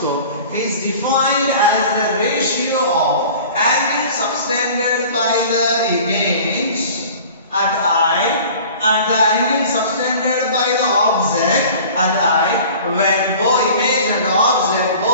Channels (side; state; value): both; inverted; correlation -0.44